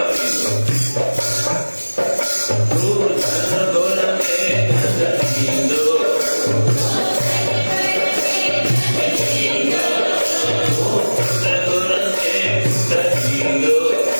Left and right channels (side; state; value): both; inverted; correlation -1.00